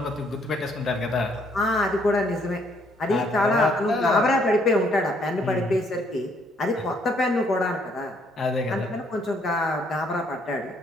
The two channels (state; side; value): normal; both; correlation 0.68